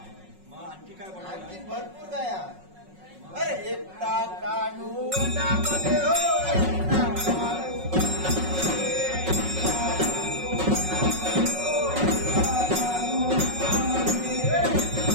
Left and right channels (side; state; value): left; late; 5.4 ms